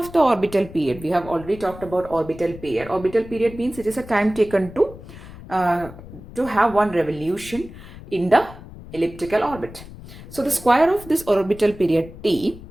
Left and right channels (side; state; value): left; noise; rumble, 16 dB below the sound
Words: the orbital period, we have already talked about orbital period. Orbital period means it is a time taken to have one revolution in the elliptical orbit. So the square of this orbital period t